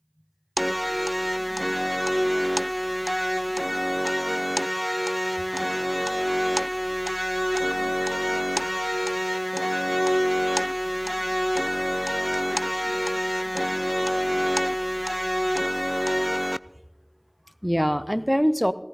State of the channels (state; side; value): identical; both; correlation 1.00